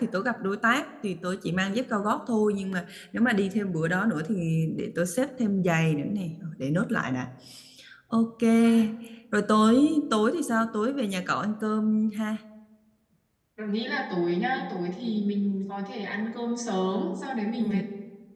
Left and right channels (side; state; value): both; identical; correlation 1.00